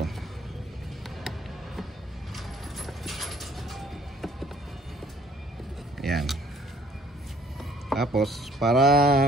Yan. Tapos para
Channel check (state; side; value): normal; both; correlation 0.60